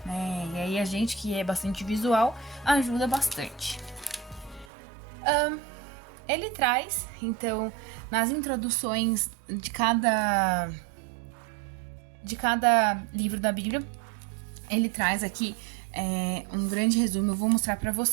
né? E aí a gente que é bastante visual ajuda bastante. Ele traz, então, nas introduções de cada livro da Bíblia, ele traz aqui um grande resumo, eu vou mostrar para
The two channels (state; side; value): drops out; left; at 4.7 s